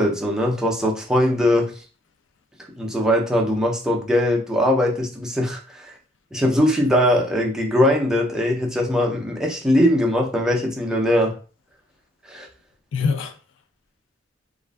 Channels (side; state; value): both; normal; correlation 0.68